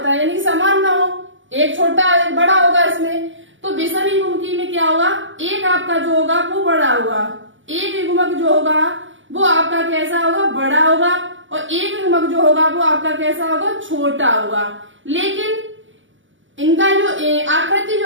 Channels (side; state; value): left; late; 0.56 ms